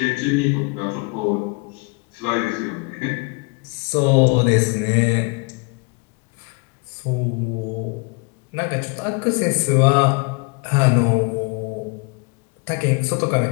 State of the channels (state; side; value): quieter; right; 31.0 dB